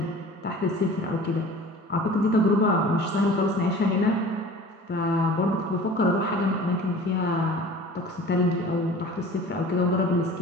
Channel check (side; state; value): both; normal; correlation 0.42